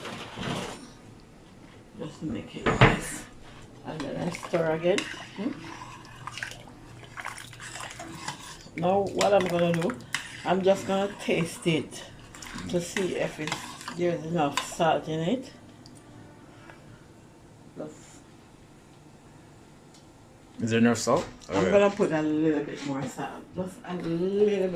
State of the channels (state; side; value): identical; both; correlation 1.00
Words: Just to make it moist. And then I stir again. Now what I'm gonna do, I'm just gonna taste it to see if there's enough salt in it. Is there enough salt? I'm gonna put a little bit more salt. Just a little